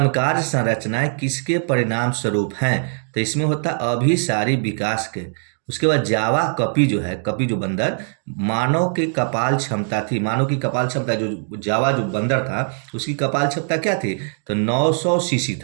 संरचनाएं किसके परिणाम स्वरूप हैं। तो इसमें होता अभिसारी विकास के। उसके बाद जावा कपी जो है, कपी जो बंदर, मानव की कपाल क्षमता थी, मानव की कपाल क्षमता जो जावा जो बंदर था उसकी कपाल क्षमता क्या थी, तो 900 सीसी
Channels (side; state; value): left; silent; 65 dB below the other